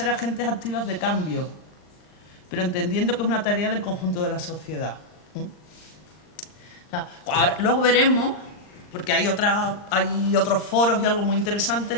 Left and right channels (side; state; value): right; late; 39 ms